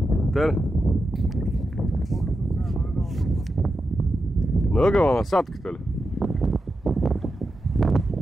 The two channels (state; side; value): normal; both; correlation 0.89